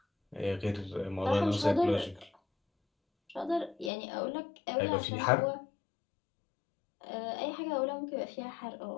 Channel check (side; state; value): right; drops out; at 3.9 s